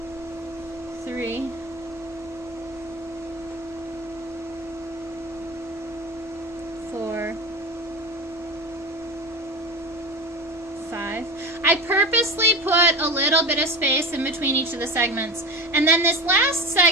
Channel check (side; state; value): both; normal; correlation 0.28